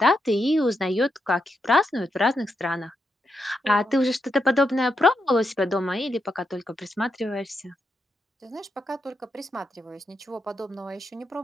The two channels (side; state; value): both; normal; correlation 0.84